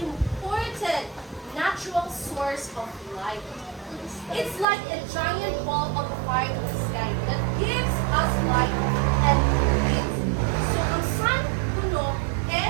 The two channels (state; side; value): drops out; left; at 4.7 s